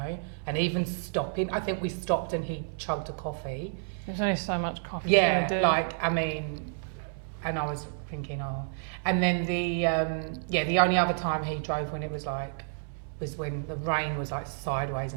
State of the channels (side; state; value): left; silent; 58 dB below the other